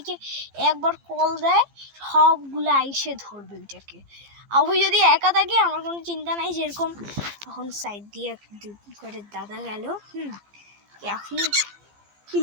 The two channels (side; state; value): left; late; 15 ms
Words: একবার কল দেয়, সবগুলো আইসে ধরবে ওইটাকে। আর ওই যদি একা থাকে আমার কোনো চিন্তা নাই। যেরকম তখন সাইড দিয়ে করে দাদা গেল, এখন কি